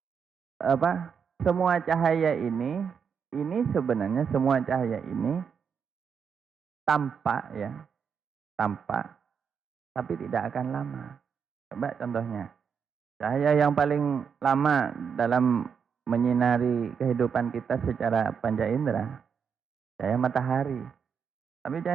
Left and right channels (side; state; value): left; quieter; 6.7 dB